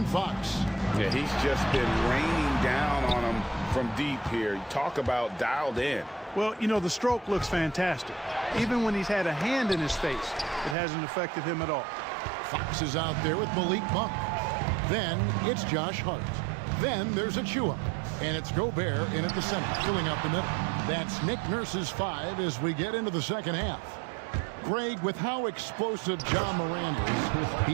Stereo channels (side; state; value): left; drops out; at 10.8 s